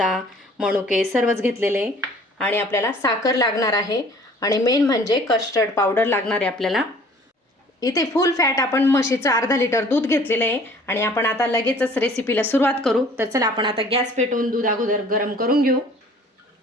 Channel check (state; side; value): normal; both; correlation 0.52